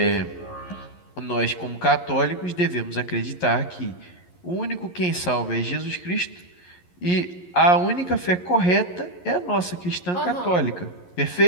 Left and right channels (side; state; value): right; late; 11 ms